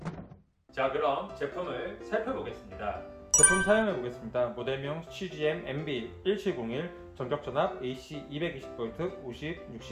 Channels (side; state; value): both; identical; correlation 1.00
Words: 자, 그럼 제품을 살펴보겠습니다. 제품 사용해 보겠습니다. 모델명 CGM MB1701 전격전압 AC 220V 50,